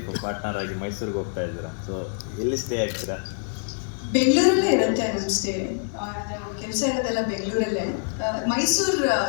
ಪಾರ್ಟ್ನರ್ ಆಗಿ ಮೈಸೂರಿಗೆ ಹೋಗ್ತಾ ಇದ್ದೀರಾ. ಸೊ ಎಲ್ಲಿ ಸ್ಟೇ ಆಗ್ತೀರಾ? ಬೆಂಗಳೂರಲ್ಲೇ ಇರುತ್ತೆ ನಮ್ಮ ಸ್ಟೇ. ಕೆಲಸ ಇರೋದೆಲ್ಲ ಬೆಂಗಳೂರಲ್ಲೇ. ಮೈಸೂರು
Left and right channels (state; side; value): silent; right; 62 dB below the other